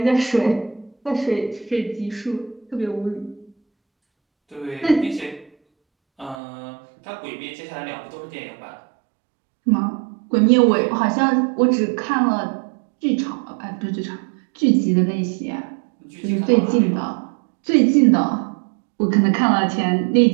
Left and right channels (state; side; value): drops out; left; at 6.4 s